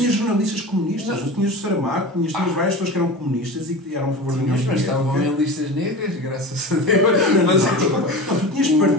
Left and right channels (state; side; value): normal; both; correlation 0.31